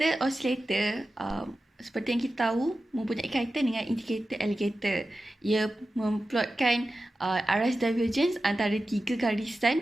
oscillator seperti yang kita tahu mempunyai kaitan dengan indikator alligator. Ia memplotkan arus divergence antara 3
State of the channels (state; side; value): normal; both; correlation 0.93